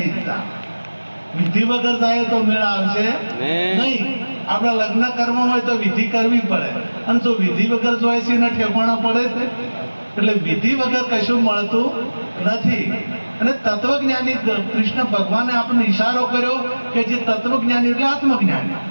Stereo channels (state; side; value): inverted; both; correlation -1.00